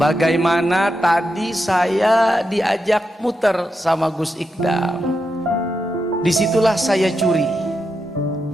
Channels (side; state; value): both; normal; correlation 0.86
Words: tadi saya diajak muter sama Gus Ikdam, disitulah saya curi.